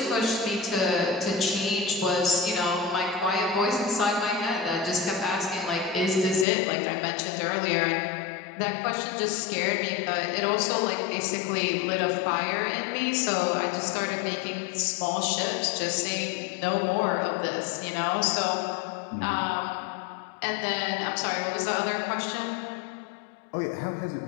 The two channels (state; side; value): drops out; right; at 6.5 s